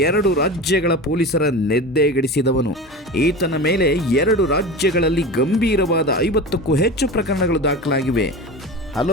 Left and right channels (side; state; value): both; normal; correlation 0.30